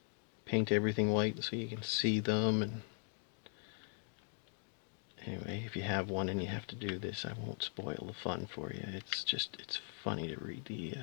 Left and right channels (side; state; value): right; silent; 51 dB below the other